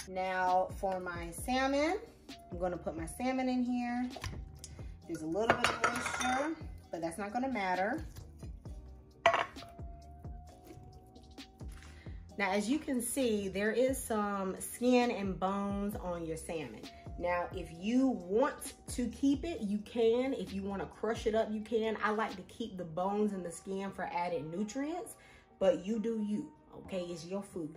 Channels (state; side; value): identical; both; correlation 1.00